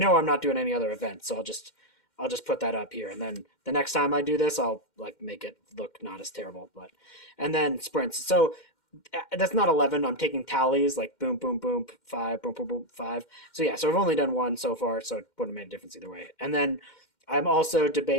I'm not doing any other events, so I'll just put that up here, and then the next time I do this, I'll like make it look not as terrible. But and then sprints. So that's not 11. I'm taking tallies like boom, boom, boom, 5, boom, boom, boom, 5. So yeah, so I've only done one so far, so it wouldn't have made a difference either way. And then I'm also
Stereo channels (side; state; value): right; late; 2.1 ms